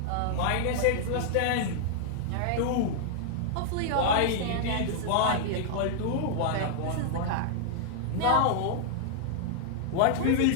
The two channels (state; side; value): different; both; correlation -0.01